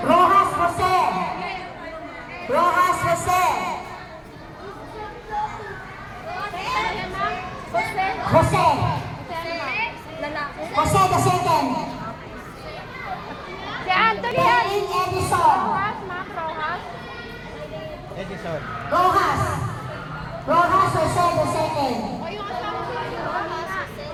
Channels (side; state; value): both; identical; correlation 1.00